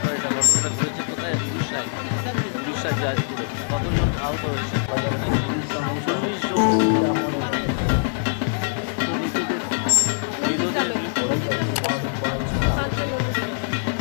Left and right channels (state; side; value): silent; right; digital silence